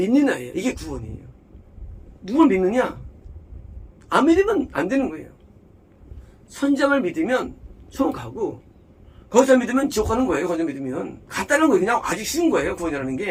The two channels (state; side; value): identical; both; correlation 1.00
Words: 이게 구원이에요. 누구를 믿느냐? 안 믿으면 안 되는 거예요. 선장을 믿으면 처음 가고 거기서 믿으면 지옥 가는 거예요. 거기서 믿으면. 간단한 거예요. 그냥 아주 쉬운 거예요. 구원이라는